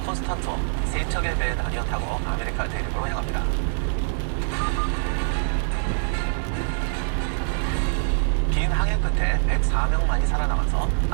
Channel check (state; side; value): silent; left; digital silence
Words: 콘스탄트와 세 척의 배에 나뉘어 타고 아메리카 대륙으로 향합니다. 긴 항해 끝에 104명만이 살아남아서